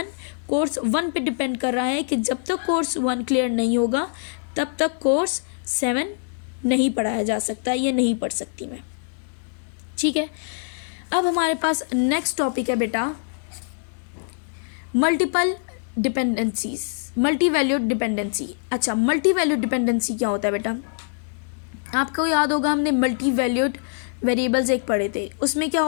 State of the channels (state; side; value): silent; right; digital silence